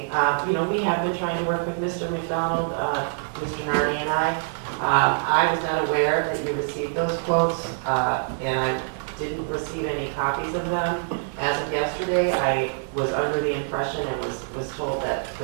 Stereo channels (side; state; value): left; silent; 57 dB below the other